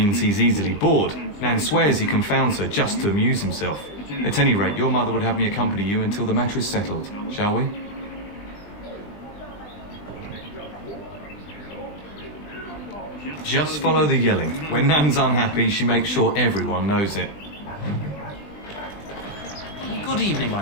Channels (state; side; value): late; right; 20 ms